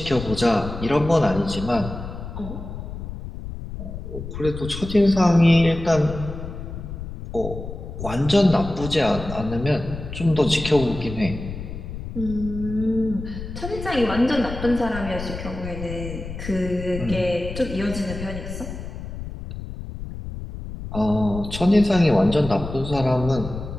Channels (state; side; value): noise; left; rumble, 9 dB below the sound